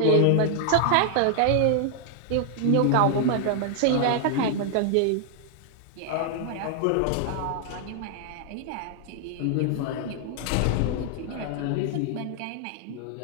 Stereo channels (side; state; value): both; different; correlation 0.00